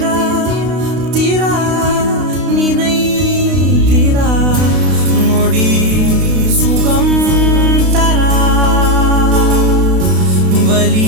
திரா நினை திரா நொடி சுகம் தரா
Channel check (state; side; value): late; left; 32 ms